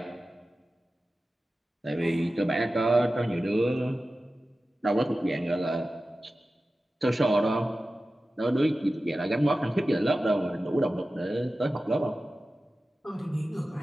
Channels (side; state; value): both; normal; correlation 0.95